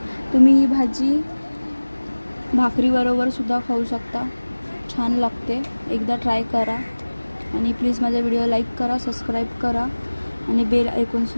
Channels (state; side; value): inverted; both; correlation -1.00